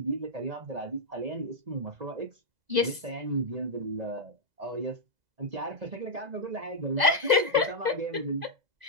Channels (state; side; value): late; left; 2.0 ms